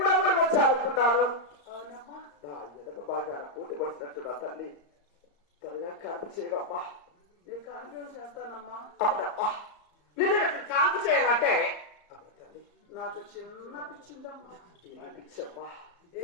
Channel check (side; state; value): right; late; 34 ms